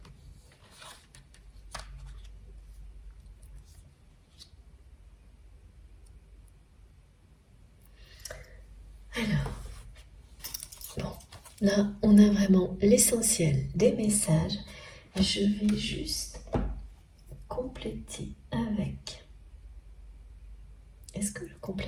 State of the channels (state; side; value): identical; both; correlation 1.00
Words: Alors, bon, là, on a vraiment l'essentiel des messages. Je vais juste compléter avec... Est-ce que je